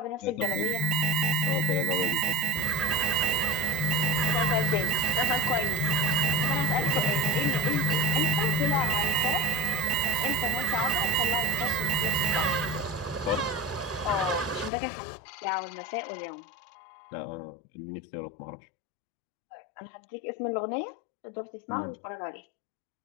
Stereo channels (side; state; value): right; drops out; at 14.7 s